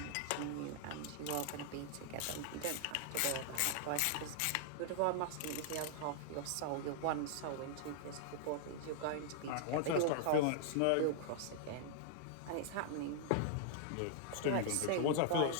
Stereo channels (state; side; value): different; both; correlation -0.01